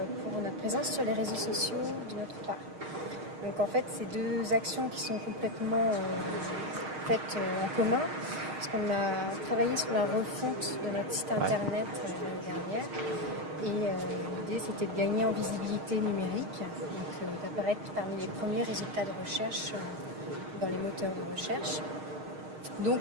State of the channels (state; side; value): late; left; 6.5 ms